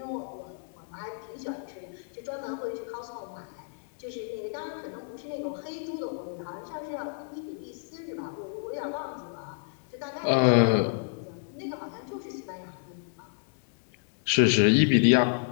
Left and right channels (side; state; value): right; silent; 58 dB below the other